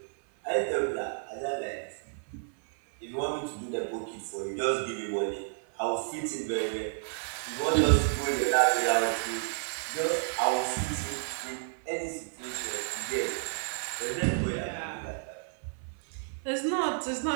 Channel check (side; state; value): left; silent; 57 dB below the other